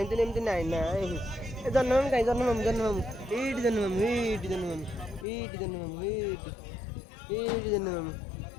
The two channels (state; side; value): drops out; right; at 5.2 s